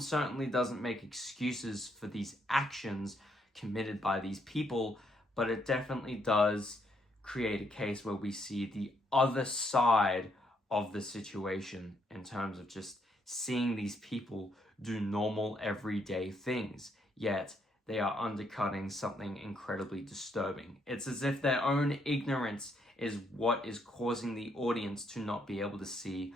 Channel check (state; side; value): normal; both; correlation 0.73